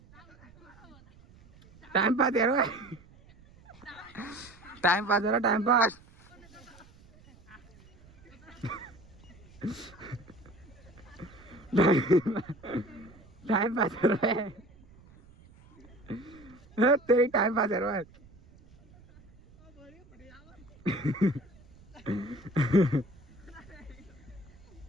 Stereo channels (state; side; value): noise; right; rumble, 24 dB below the sound